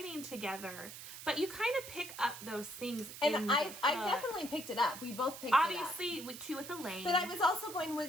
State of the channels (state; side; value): noise; right; hiss, 12 dB below the sound